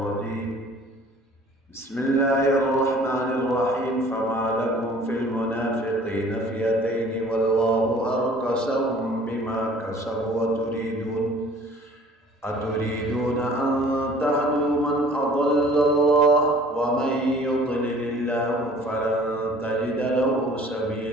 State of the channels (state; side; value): normal; both; correlation 0.51